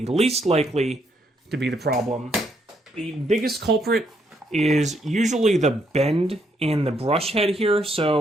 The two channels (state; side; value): normal; both; correlation 0.74